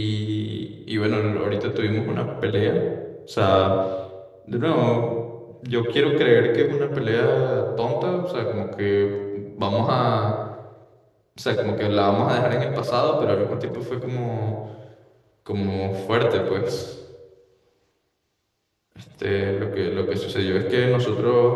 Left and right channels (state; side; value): identical; both; correlation 1.00